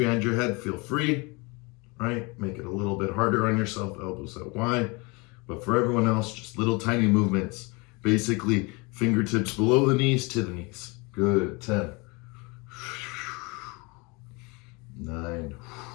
your head, feel free, right? Make it a little bit harder on yourself, elbows out wide. But for everyone else, just little tiny movements, basically fingertips below the knees to the knees. Good, 10. 9.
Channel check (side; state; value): right; quieter; 27.6 dB